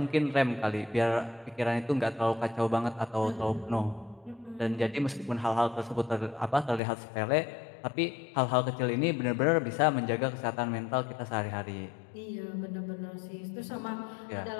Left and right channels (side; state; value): right; drops out; at 6.8 s